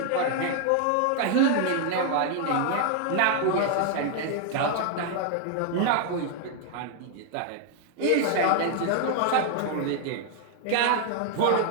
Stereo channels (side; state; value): both; different; correlation 0.00